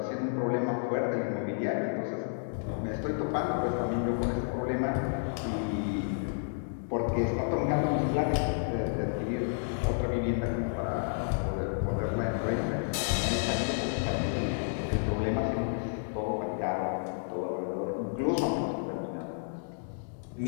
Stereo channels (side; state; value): right; silent; digital silence